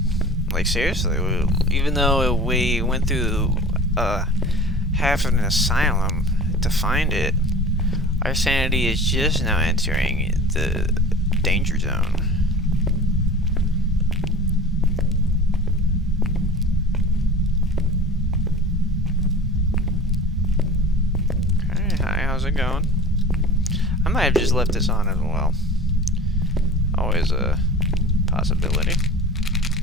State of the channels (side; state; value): both; normal; correlation 0.39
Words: Like seriously, even though we went through half of an asylum to find it, our sanity is just now entering the danger zone. Okay, hi, how's it going? I might have just left this on as well. Always a possibility.